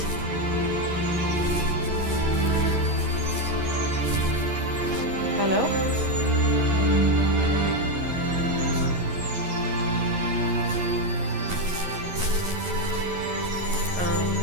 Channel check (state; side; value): late; left; 11 ms